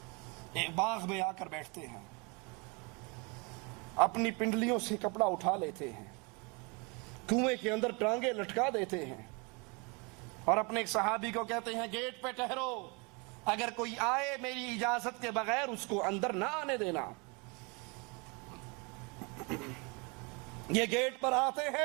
ایک باغ میں آ کر بیٹھتے ہیں، اپنی پنڈلیوں سے کپڑا اٹھا لیتے ہیں، کنویں کے اندر ٹانگیں لٹکا دیتے ہیں اور اپنے ایک صحابی کو کہتے ہیں گیٹ پہ ٹھہرو، اگر کوئی آئے میری اجازت کے بغیر اس کو اندر نہ آنے دینا۔ یہ گیٹ پر آتے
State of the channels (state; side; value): quieter; left; 30.4 dB